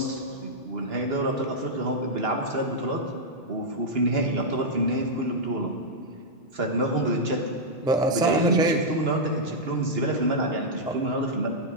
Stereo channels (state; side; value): normal; both; correlation -0.05